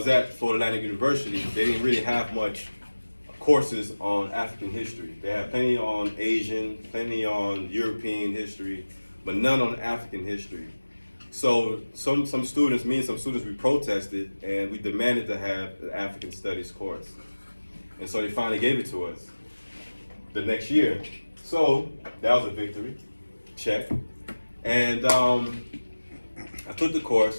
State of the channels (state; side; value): inverted; both; correlation -1.00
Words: at, Florida Atlantic University, they didn't really have much courses on African history. They had plenty on Asian, plenty on European history, but none on African history. So some students, me and some students, we protested and we demanded to have the African Studies course. And so they finally gave it to us the next year. So that was a victory, check. And I took the